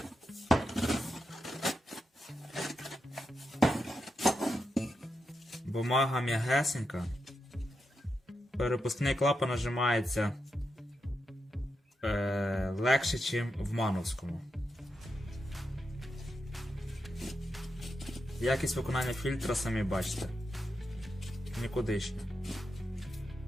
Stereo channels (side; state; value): both; normal; correlation 0.86